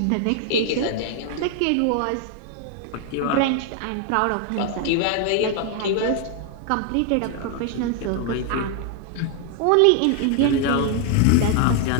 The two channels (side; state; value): both; different; correlation 0.00